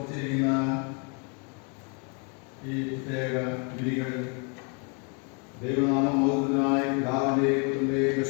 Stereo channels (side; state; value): right; quieter; 36.4 dB